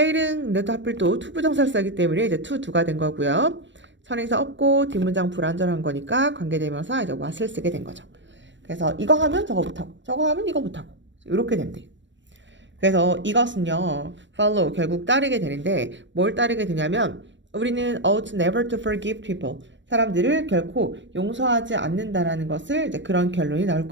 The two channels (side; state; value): left; late; 0.53 ms